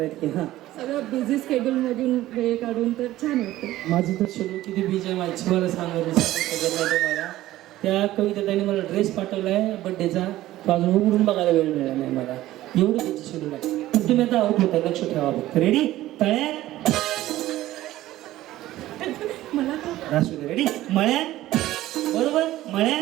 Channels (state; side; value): quieter; left; 15.3 dB